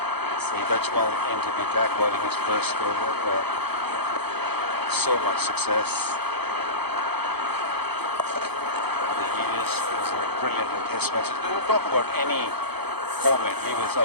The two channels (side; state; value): left; late; 0.97 ms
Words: Saeed Ajmal into the attack, bowling his first over. So much success. Over the years, he was brilliant in test matches. We don't talk about any format. He was